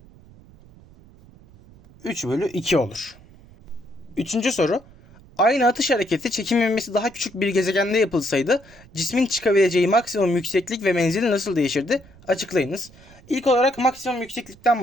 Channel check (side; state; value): right; noise; rumble, 24 dB below the sound